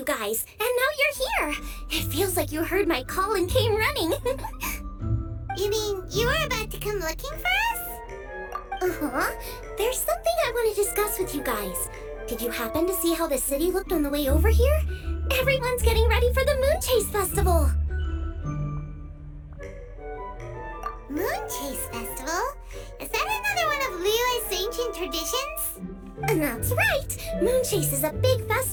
guys, and now you're here. It feels like you heard my call and came running. You mean you were about to come looking for us? Uh-huh. There's something I want to discuss with you guys. Did you happen to see how the city looked on the way over here? Everyone's getting ready for the Moon Chase Festival. Moon Chase Festival? Is that another one of Liyue's ancient traditions? That's right! Moon Chase is a big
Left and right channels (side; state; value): both; identical; correlation 1.00